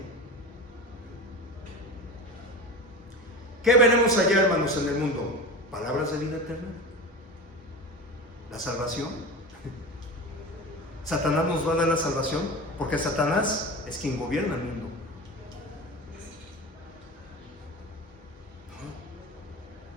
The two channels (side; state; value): both; normal; correlation 0.29